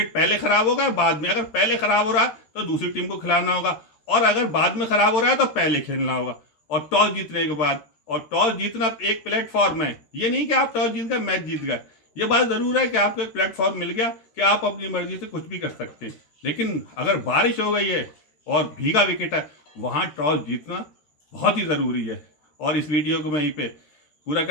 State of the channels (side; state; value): right; late; 13 ms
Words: पहले खराब होगा, बाद में। अगर पहले खराब हो रहा है तो दूसरी टीम को खिलाना होगा और अगर बाद में खराब हो रहा है तो पहले खेलना होगा। और टॉस जीतने के बाद, और टॉस जीतना एक प्लेटफॉर्म है, ये नहीं कि आप टॉस जीत गए मैच जीत गए। ये बात ज़रूर है कि आपको एक प्लेटफॉर्म मिल गया कि आप अपनी मर्जी से कुछ भी कर सकते हैं, लेकिन अगर बारिश हो गई है और भीगा विकेट है, वहाँ टॉस जीतना बहुत ही ज़रूरी है। और इस वीडियो को मैं यहीं पे पूरा